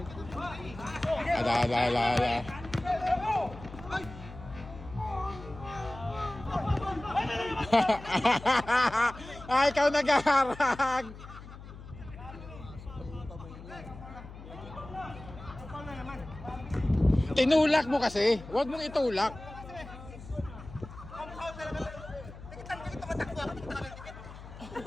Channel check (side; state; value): left; noise; hum, 15 dB below the sound